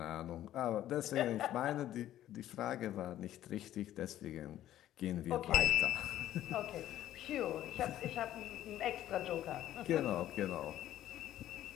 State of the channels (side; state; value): right; quieter; 12.8 dB